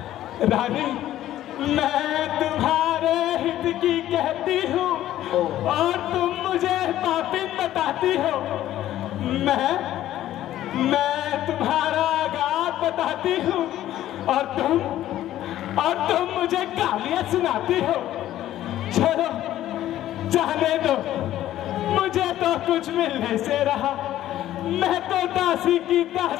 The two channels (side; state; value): right; quieter; 13.2 dB